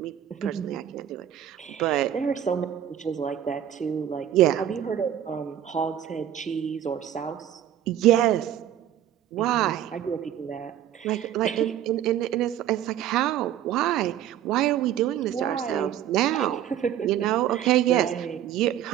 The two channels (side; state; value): left; quieter; 10.8 dB